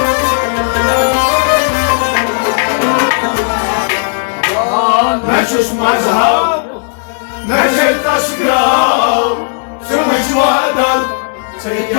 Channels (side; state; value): right; silent; digital silence